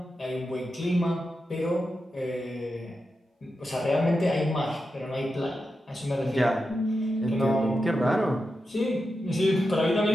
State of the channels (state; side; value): normal; both; correlation 0.89